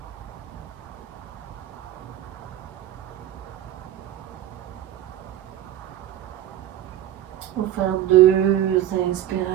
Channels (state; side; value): quieter; left; 12.2 dB